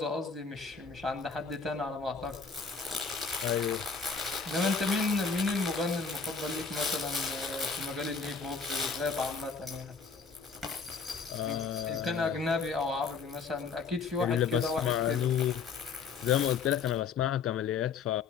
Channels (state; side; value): quieter; right; 5.4 dB